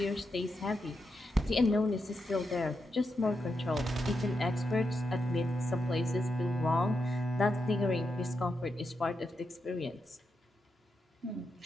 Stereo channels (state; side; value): normal; both; correlation 0.85